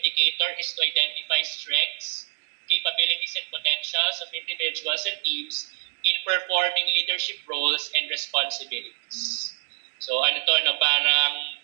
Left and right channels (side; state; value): left; silent; digital silence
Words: is to identify strengths, capabilities, and potentials of individuals and teams in performing leadership roles and responsibilities. So parang